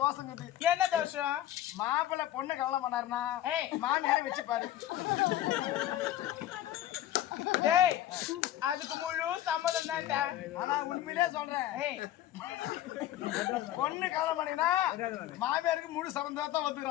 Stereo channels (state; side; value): quieter; right; 13.0 dB